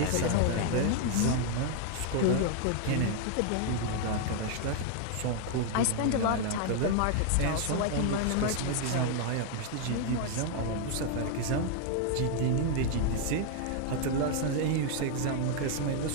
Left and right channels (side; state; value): both; different; correlation 0.00